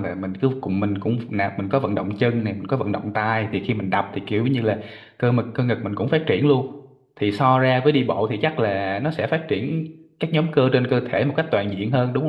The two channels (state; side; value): identical; both; correlation 1.00